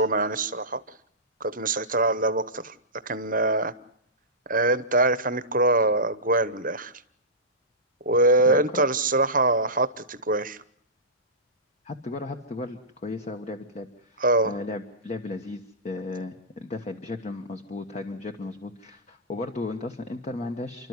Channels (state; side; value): normal; both; correlation -0.19